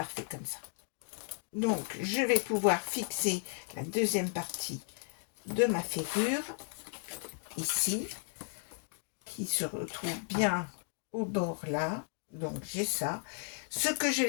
comme ça. Donc, je vais pouvoir fixer la deuxième partie de ma ferrure, ici, qui se retrouve bien au bord là. Donc, j'ai ça. Ce que je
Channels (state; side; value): silent; right; 55 dB below the other